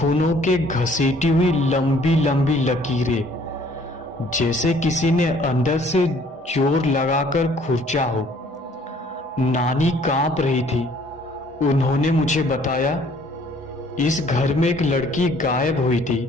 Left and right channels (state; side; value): normal; both; correlation 0.58